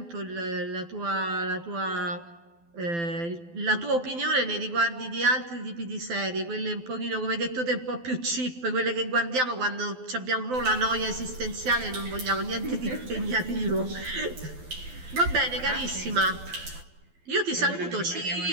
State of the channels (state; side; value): late; left; 12 ms